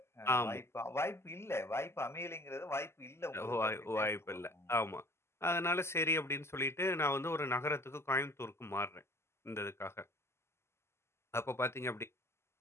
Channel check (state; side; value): late; right; 0.12 ms